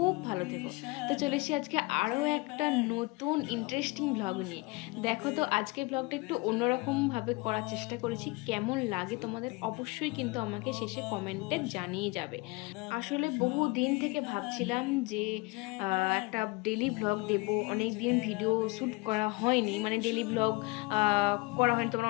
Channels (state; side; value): quieter; right; 25.4 dB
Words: ভালো থেকো। তো চলে এসেছি আজকে আরও একটা নতুন ইন্টারেস্টিং ব্লগ নিয়ে। দেখো তো আজকের ব্লগটা একটু অন্যরকমভাবে করার চেষ্টা করেছি। কেমন লাগে তোমাদের অবশ্যই কিন্তু আমাকে শেষে কমেন্টে জানিয়ে যাবে। আসলে বহু দিন থেকে ভাবছিলাম যে একটা ডেলি ব্লগ দেব। অনেক দিন ভিডিও শ্যুট করা হয়নি, মানে ডেলি ব্লগ করা হয়নি।